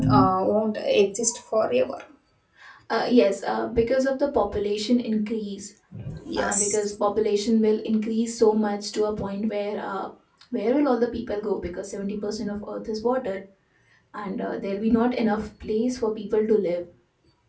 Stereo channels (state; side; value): identical; both; correlation 1.00